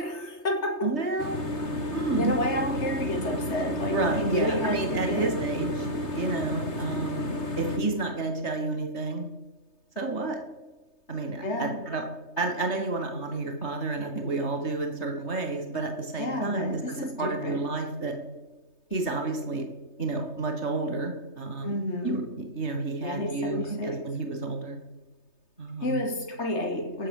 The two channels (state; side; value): late; right; 3.3 ms